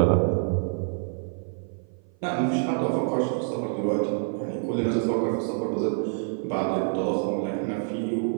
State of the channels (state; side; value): silent; left; 55 dB below the other